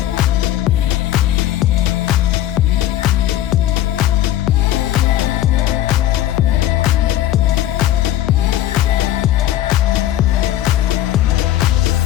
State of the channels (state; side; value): quieter; right; 13.0 dB